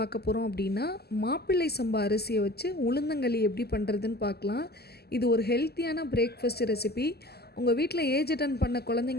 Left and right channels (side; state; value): right; late; 0.46 ms